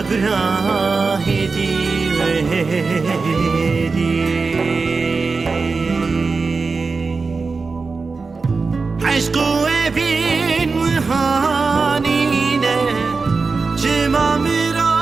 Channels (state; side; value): quieter; left; 4.3 dB